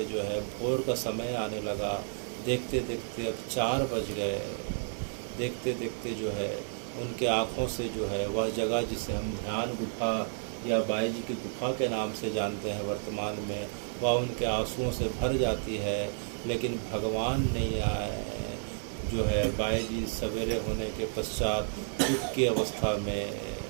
जो है भोर का समय आने लगा। देखते देखते अब 4 बज गए। देखते देखते जो है उनके आँखों से जो है वह जगह जिसे हम ध्यान गुफा या बाई जी की गुफा के नाम से जानते हैं वर्तमान में, वह उनके आंसुओं से भर जाती है। लेकिन भगवान नहीं आए। जो है बाई जी सवेरे होने के पश्चात दुख की अवस्था में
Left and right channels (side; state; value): left; silent; digital silence